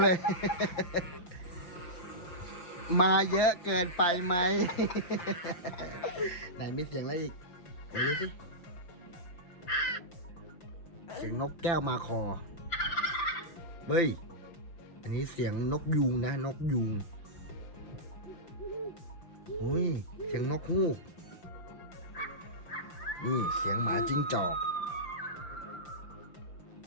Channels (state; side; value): late; right; 5.8 ms